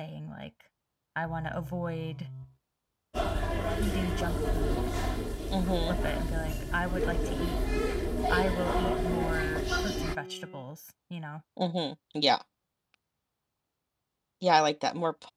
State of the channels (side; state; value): both; identical; correlation 1.00